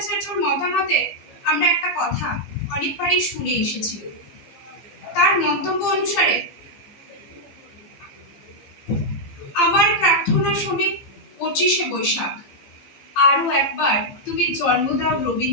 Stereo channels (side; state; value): right; late; 15 ms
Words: মতামতে আমরা একটা কথা অনেকবারই শুনে এসেছি। তার মন্তব্য অনুসারে, আমার প্রার্থনা শুনে 25শে বৈশাখ আরো একবার তুমি জন্ম দাও